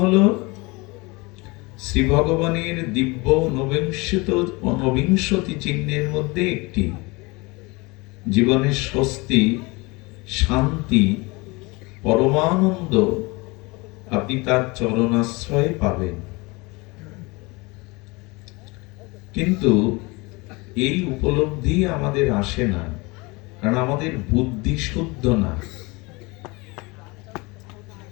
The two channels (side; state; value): right; quieter; 25.5 dB